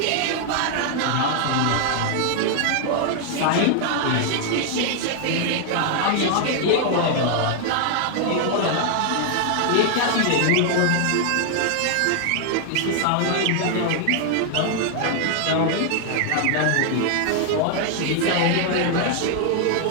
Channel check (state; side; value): different; both; correlation 0.00